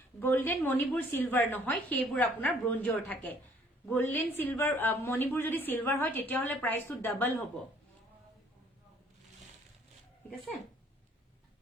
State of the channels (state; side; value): normal; both; correlation 0.59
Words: গোল্ডেন মণিপুৰ সিলভাৰ নহয় সেইবোৰ আপোনাৰ ব্ৰঞ্জৰ থাকে গোল্ডেন সিলভাৰ মণিপুৰ যদি সিলভাৰ হয় তেতিয়া হলে প্ৰাইসটো ডাবল হ'ব ঠিক আছে